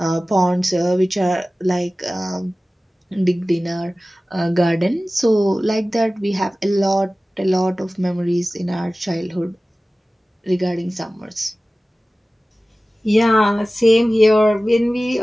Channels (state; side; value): normal; both; correlation 0.97